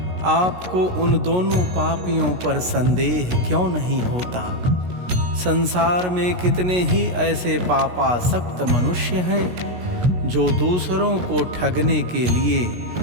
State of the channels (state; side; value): late; left; 16 ms